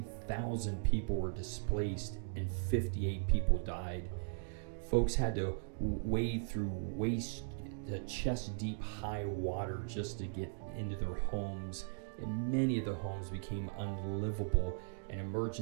people were displaced and 58 people died. Folks had to wade through chest-deep high water just to get into their homes, and many of the homes became unlivable, and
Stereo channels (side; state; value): left; silent; digital silence